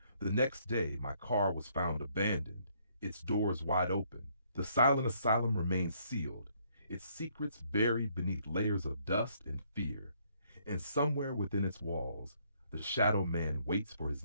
The next day, my car was found abandoned, its doors wide open. The Silent Asylum remained sealed, its secrets buried beneath layers of dust and fear. And somewhere within its walls, the Shadow Man waits for his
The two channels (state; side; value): inverted; both; correlation -0.68